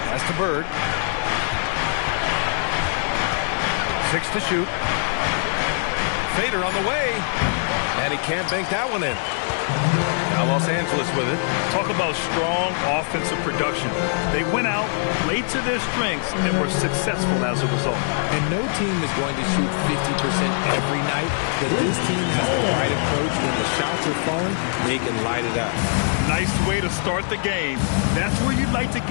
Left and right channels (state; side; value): silent; right; digital silence